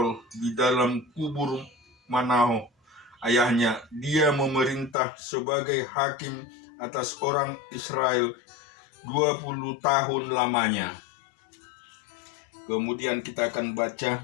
di dalam kubur Manaho ayahnya. Dia memerintah sebagai hakim atas orang Israel 20 tahun lamanya. Kemudian kita akan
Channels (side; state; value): right; drops out; at 5.0 s